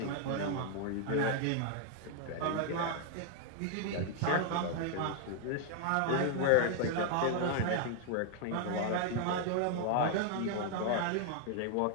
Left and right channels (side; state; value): both; different; correlation 0.00